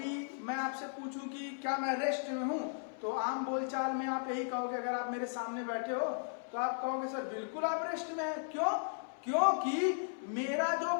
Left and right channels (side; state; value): right; silent; digital silence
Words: मैं आपसे पूछूं कि क्या मैं रेस्ट में हूं, तो आम बोलचाल में आप यही कहोगे, अगर आप मेरे सामने बैठे हो तो आप कहोगे सर बिल्कुल आप रेस्ट में हैं। क्यों? क्योंकि मेरा जो